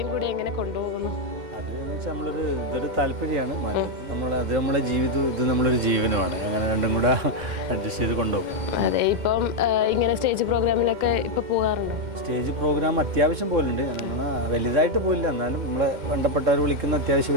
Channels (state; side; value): late; left; 2.1 ms